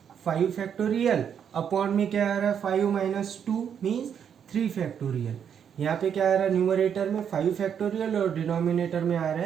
5 फैक्टोरियल, अपॉन में क्या आ रहा है 5 माइनस 2 मीन्स 3 फैक्टोरियल। यहाँ पे क्या आ रहा है, न्यूमरेटर में 5 फैक्टोरियल और डिनोमिनेटर में आ रहा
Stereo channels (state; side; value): quieter; left; 8.1 dB